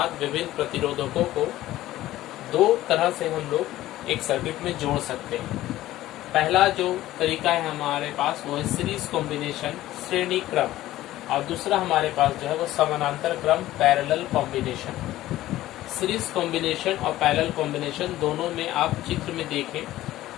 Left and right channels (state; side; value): quieter; right; 15.1 dB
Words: विभिन्न प्रतिरोधकों को दो तरह से हम लोग एक सर्किट में जोड़ सकते हैं। पहला जो तरीका है हमारे पास वो है सीरीज कॉम्बिनेशन, श्रेणी क्रम, और दूसरा हमारे पास जो है वो समानांतर क्रम, पैरेलल कॉम्बिनेशन। सीरीज कॉम्बिनेशन और पैरेलल कॉम्बिनेशन दोनों में आप चित्र में देखें।